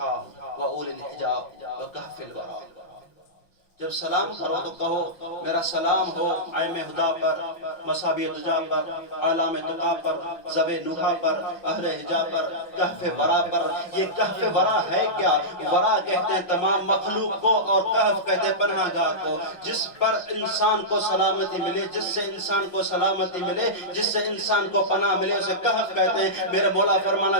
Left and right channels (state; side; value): late; right; 5.9 ms